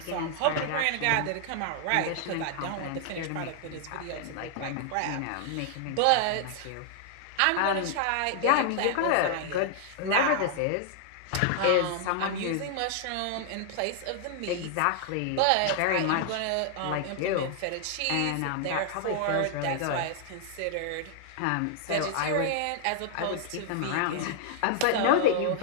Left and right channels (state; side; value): different; both; correlation 0.00